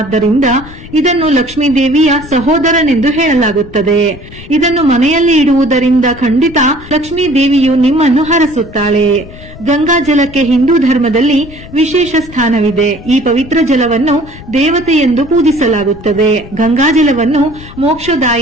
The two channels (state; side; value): noise; left; rumble, 17 dB below the sound